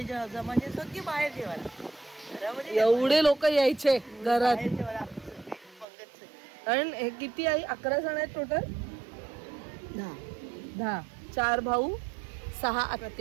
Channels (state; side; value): drops out; left; at 5.9 s